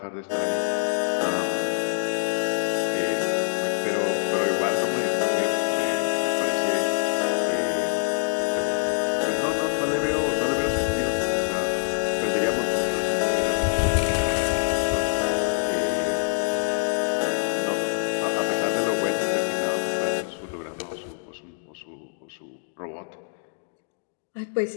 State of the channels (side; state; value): right; silent; digital silence